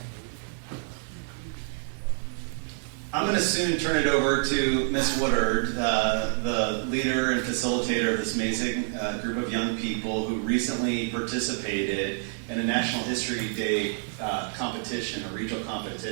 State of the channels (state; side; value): silent; left; 57 dB below the other